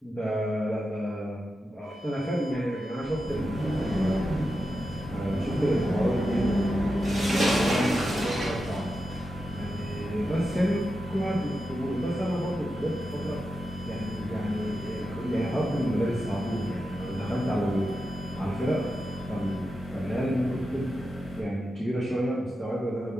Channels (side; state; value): both; normal; correlation 0.89